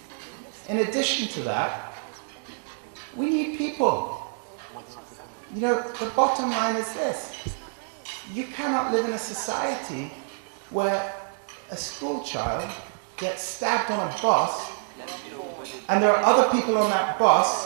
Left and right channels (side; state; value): left; silent; digital silence